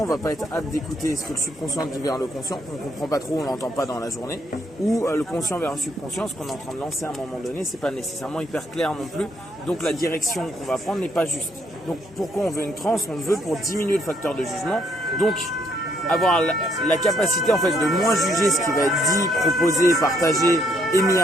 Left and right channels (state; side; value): normal; both; correlation 0.71